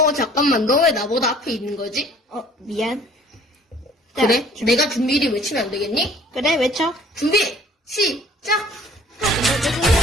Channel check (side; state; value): both; normal; correlation 0.54